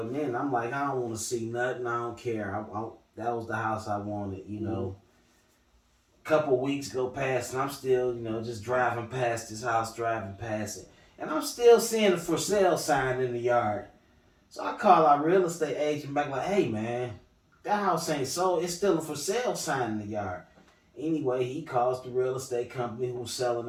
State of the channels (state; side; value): identical; both; correlation 1.00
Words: in. I'm like, I don't want to see nothing. I don't care. That was the house I wanted. Couple weeks go past, and I'm still just driving past this house, driving past it. And I'm still seeing a for sale sign in the yard. So I call our real estate agent back like, hey man, that house ain't sold. It's still a for sale sign in the yard. Anyway, he calls the real estate company who was selling